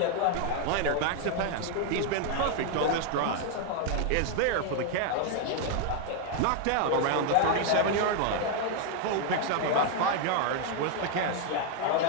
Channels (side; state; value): both; different; correlation 0.00